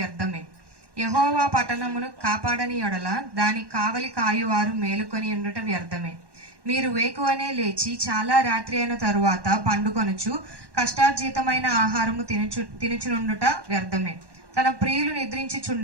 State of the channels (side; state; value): left; late; 1.1 ms